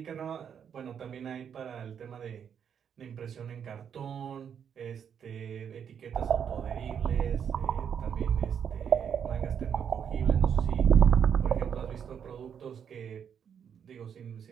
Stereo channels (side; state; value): left; quieter; 7.9 dB